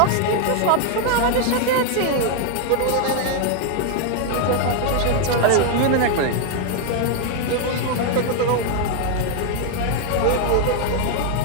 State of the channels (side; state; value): both; different; correlation 0.00